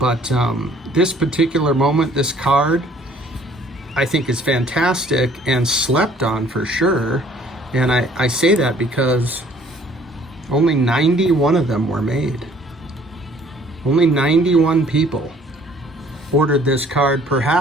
this particular moment, this card, I think is fantastic and slept on for sure. And I say that because only 91 of them were made. Only 91 people ordered this card,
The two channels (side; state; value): both; normal; correlation 0.57